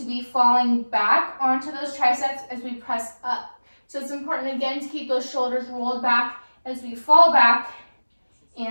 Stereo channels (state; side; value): inverted; both; correlation -1.00